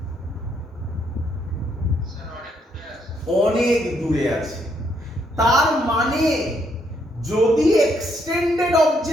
অনেক দূরে আছে। তার মানে যদি এক্সটেন্ডেড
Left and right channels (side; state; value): both; normal; correlation 0.74